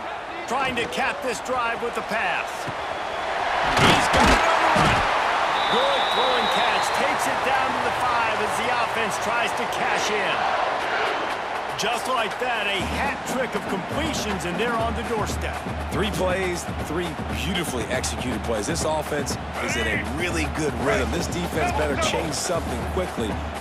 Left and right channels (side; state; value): both; identical; correlation 1.00